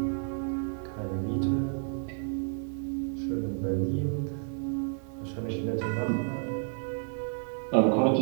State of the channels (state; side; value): silent; left; 57 dB below the other